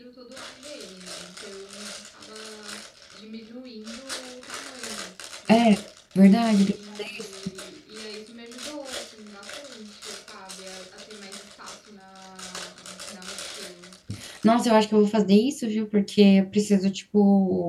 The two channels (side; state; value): both; identical; correlation 1.00